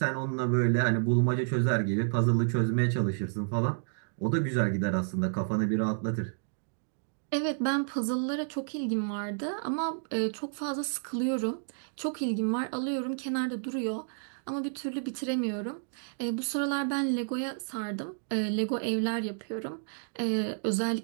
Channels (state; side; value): silent; left; digital silence